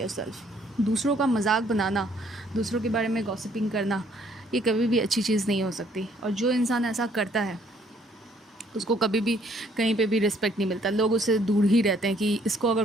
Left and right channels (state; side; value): normal; both; correlation 0.64